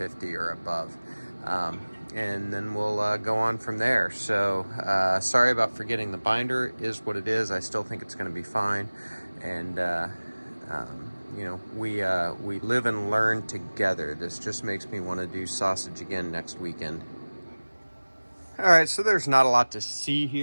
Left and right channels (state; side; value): inverted; both; correlation -1.00